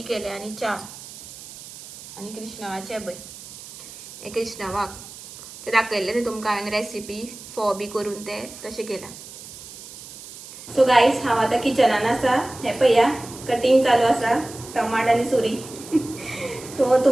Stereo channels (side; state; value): right; noise; hiss, 15 dB below the sound